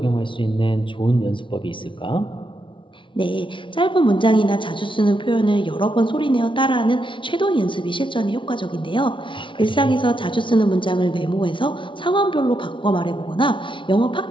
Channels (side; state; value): right; late; 0.24 ms